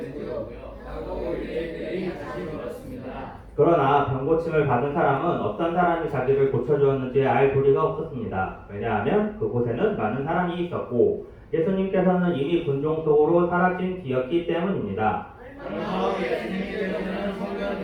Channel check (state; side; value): identical; both; correlation 1.00